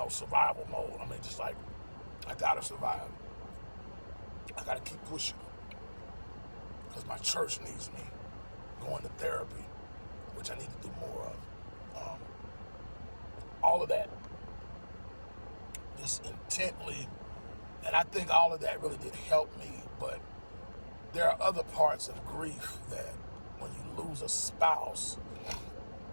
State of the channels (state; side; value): inverted; both; correlation -1.00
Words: survival mode. Just like, I gotta survive. I gotta keep pushing because my church needs me. Going to therapy, which I need to do more of. All of that, just intently, and I think all of that really did help me, but there are other parts of grief that when you lose a spouse,